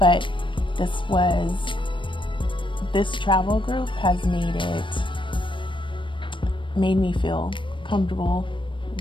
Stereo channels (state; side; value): late; right; 0.24 ms